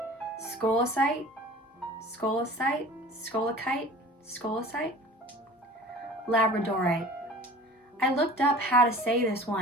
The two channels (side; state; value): both; normal; correlation 0.43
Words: scolecite, labradorite. I looked up how to say this